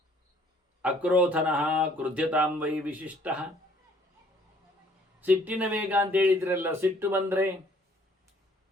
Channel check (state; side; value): normal; both; correlation 0.60